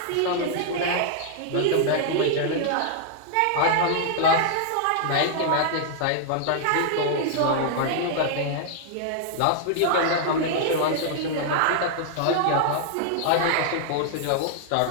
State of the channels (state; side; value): different; both; correlation -0.01